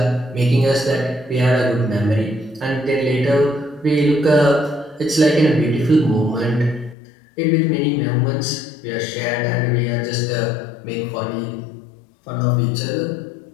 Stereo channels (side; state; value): right; drops out; at 7.0 s